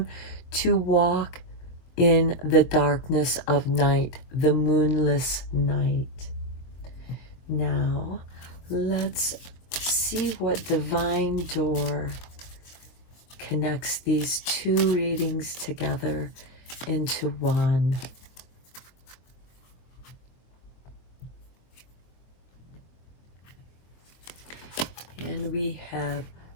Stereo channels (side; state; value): right; late; 23 ms